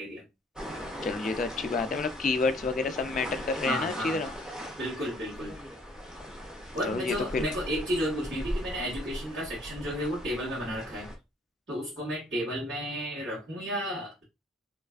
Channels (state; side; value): normal; both; correlation 0.60